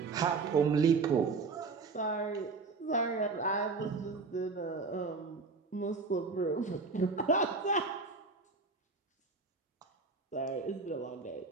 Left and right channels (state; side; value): quieter; left; 4.3 dB